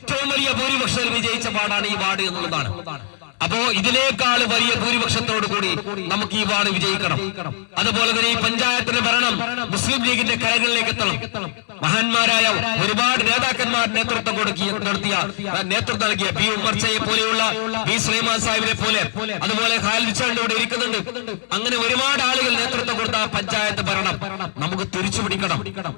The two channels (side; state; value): right; silent; digital silence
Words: വലിയ ഭൂരിപക്ഷത്തിൽ വിജയിച്ച പാടാണ് ഈ വാർഡ് എന്നുള്ളതാണ്. അപ്പോ ഇതിനേക്കാൾ വലിയ ഭൂരിപക്ഷത്തോടു കൂടി നമുക്ക് ഈ വാർഡ് വിജയിക്കണം. അതുപോലെ തന്നെ ഈ പഞ്ചായത്തിന്റെ ഭരണം മുസ്ലിം ലീഗിന്റെ കരകളിലേക്ക് എത്തണം. മഹാന്മാരായ ഒരുപാട് നേതാക്കന്മാർ നേതൃത്വം നൽകിയ പി ഉമ്മർച്ചയെ പോലെയുള്ള പി സുലൈമാൻ സാഹിബിനെ പോലെ, അതുപോലെ ഖാലിദ് ഇവിടെ ഇരിക്കുന്നുണ്ട്. അങ്ങനെ ഒരുപാട് ആളുകൾ നേതൃത്വം കൊടുത്ത പഞ്ചായത്ത് ഭരണം നമുക്ക് തിരിച്ചു പിടിക്കണം.